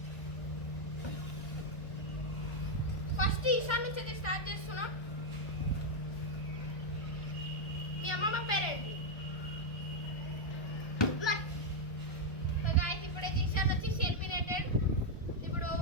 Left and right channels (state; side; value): late; right; 1.4 ms